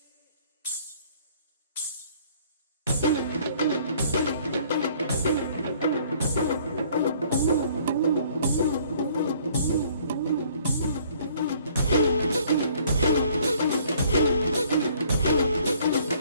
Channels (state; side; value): inverted; both; correlation -0.59